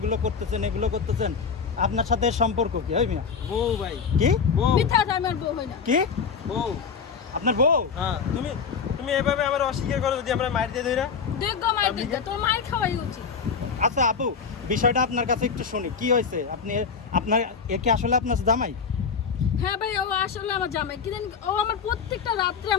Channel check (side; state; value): right; quieter; 6.0 dB